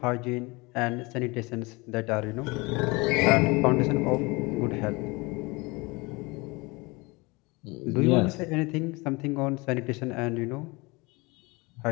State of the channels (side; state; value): right; quieter; 25.4 dB